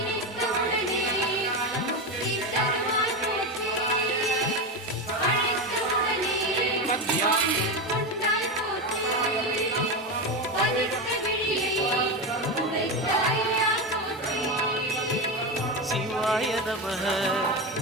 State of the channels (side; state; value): both; normal; correlation 0.16